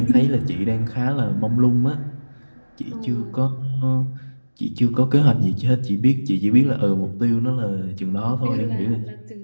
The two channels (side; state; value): both; inverted; correlation -1.00